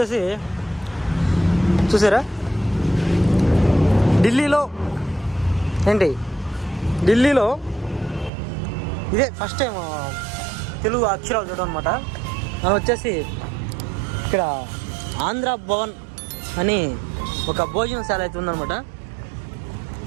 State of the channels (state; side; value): drops out; left; at 8.3 s